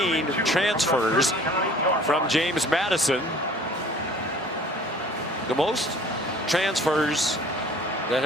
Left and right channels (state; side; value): normal; both; correlation 0.50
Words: transfers from James Madison. The most transfers that